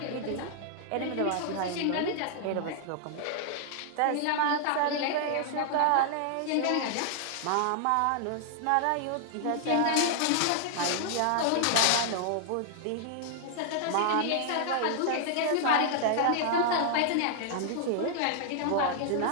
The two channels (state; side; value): different; both; correlation -0.01